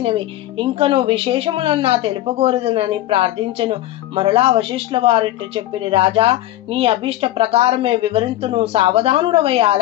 ఇంకను విశేషములన్నా తెలుపగోరదనని ప్రార్థించను. మరలా వశిష్ఠుల వారిట్టు చెప్పిరి. రాజా, నీ అభిష్ట ప్రకారమే వివరింతును, సావధానుడవై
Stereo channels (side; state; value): right; quieter; 14.7 dB